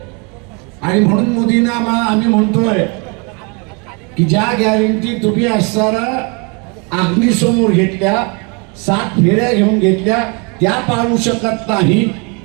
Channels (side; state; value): left; quieter; 32.3 dB